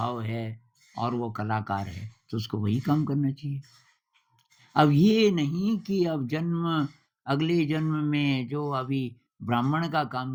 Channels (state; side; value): identical; both; correlation 1.00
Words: है और वो कलाकार है, तो उसको वही काम करना चाहिए। अब ये नहीं कि अब अगले जन्म में जो अभी ब्राह्मण का काम